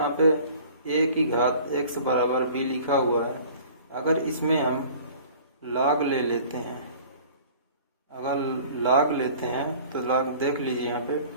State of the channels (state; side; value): inverted; both; correlation -0.47